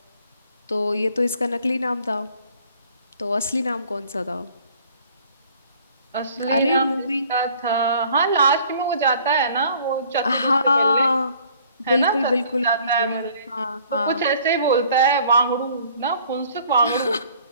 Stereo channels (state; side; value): inverted; both; correlation -0.56